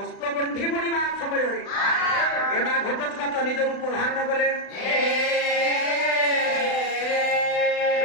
ବୁଣିବା ସମୟରେ ଏ ମା ଘଟୋତ୍କଚ ନିଜ ରୂପ ଧାରଣ କଲେ।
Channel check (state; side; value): late; right; 36 ms